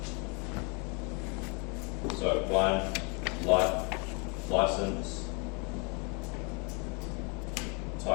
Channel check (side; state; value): right; quieter; 32.7 dB